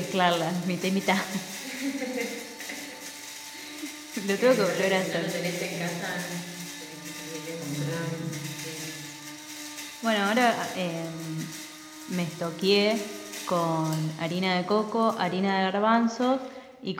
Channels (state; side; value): identical; both; correlation 1.00